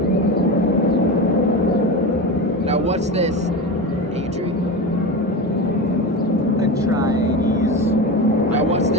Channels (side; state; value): both; normal; correlation 0.23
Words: Now what's this, Adrian? Atreides. Now what's